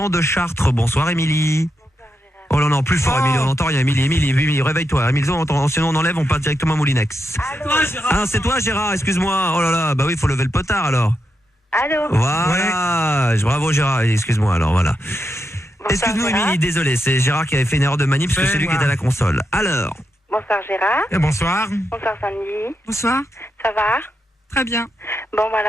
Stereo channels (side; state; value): both; normal; correlation 0.85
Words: de Chartres. Bonsoir Émilie. Oh là non, plus fort Émilie, on n'entend rien. Émilie, réveille-toi. Émilie, sinon on enlève, on part directement à Moulinex. Ah, c'est toi Gérard, excuse-moi. Oh là là, bah oui, il faut lever le potard alors. Allô. Voilà, bravo Gérard, excuse-moi alors, voilà. Excuse-nous Émilie, désolé, c'est Gérard qui avait fait une erreur de manip parce que c'est lui qui était à la console. Alors. Bonsoir Gérard. Et bonsoir. Bonsoir Sandy. Bonsoir. Ça va? Très bien. Bon, bah